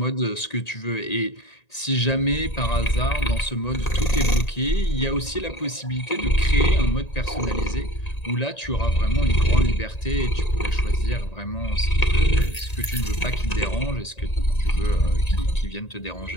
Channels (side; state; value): right; late; 1.8 ms